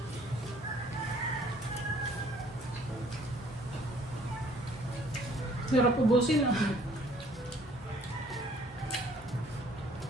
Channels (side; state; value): both; normal; correlation 0.59